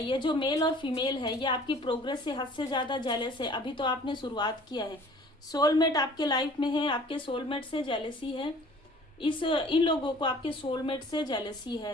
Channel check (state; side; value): normal; both; correlation 0.50